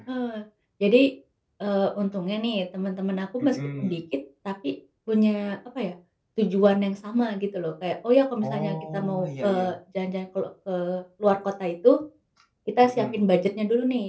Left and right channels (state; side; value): identical; both; correlation 1.00